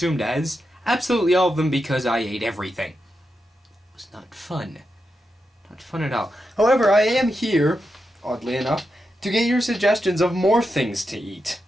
as absolutely all of them because I ate everything. It was not fun. Not fun at all. However, I am here, oddly enough, to get your suggestions of more things to eat.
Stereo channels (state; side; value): normal; both; correlation 0.87